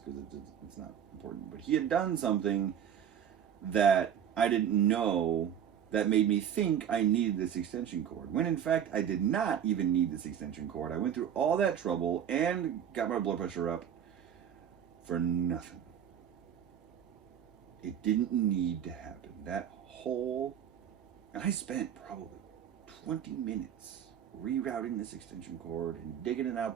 it's not important, but he had done something that I didn't know that made me think I needed this extension cord, when in fact I did not even need this extension cord. I went through all that trouble and got my blood pressure up for nothing. It didn't need to happen. And I spent probably 20 minutes rerouting this extension cord and digging it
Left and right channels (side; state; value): left; quieter; 9.0 dB